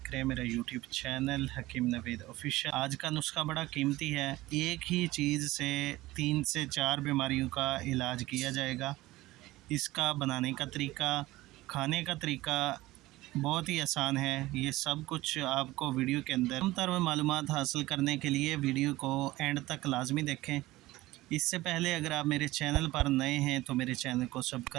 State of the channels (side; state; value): left; quieter; 18.1 dB